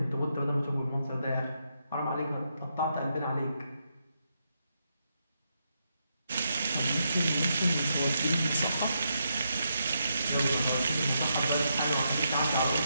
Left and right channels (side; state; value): both; inverted; correlation -0.81